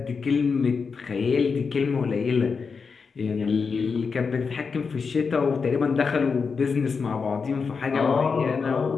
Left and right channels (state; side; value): quieter; right; 5.3 dB